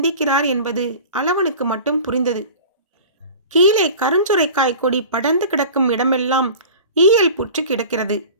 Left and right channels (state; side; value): inverted; both; correlation -0.39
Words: என்பது அளவனுக்கு மட்டும் புரிந்தது. கீழே கருஞ்சுரைக்காய் கொடி படர்ந்து கிடக்கும் இடமெல்லாம் ஈயல் புற்று கிடக்கிறது.